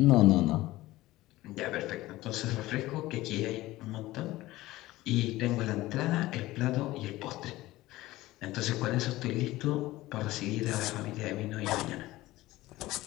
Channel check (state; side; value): quieter; right; 17.6 dB